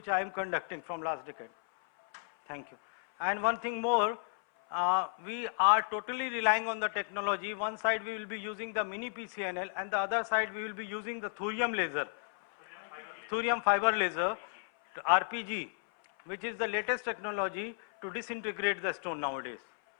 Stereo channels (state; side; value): silent; right; 55 dB below the other